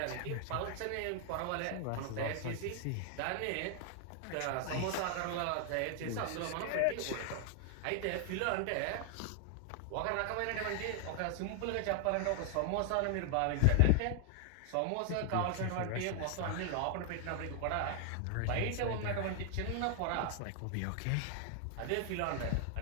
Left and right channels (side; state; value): both; different; correlation 0.00